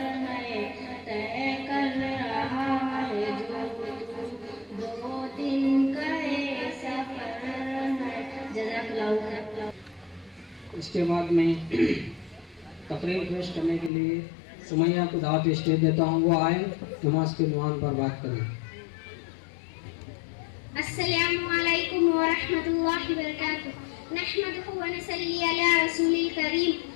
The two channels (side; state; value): right; drops out; at 13.9 s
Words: ہے طے کر رہا ہے جو دو دن کا سفر ہے. جزاک اللہ. اس کے بعد میں تقریر پیش کرنے کے لیے سمیہ کو دعوت اسٹیج دیتا ہوں. وہ آئے نماز کے عنوان پر بات کریں. السلام علیکم ورحمۃ اللہ وبرکاتہ. نحمدہ ونصلی علی رسول الکریم.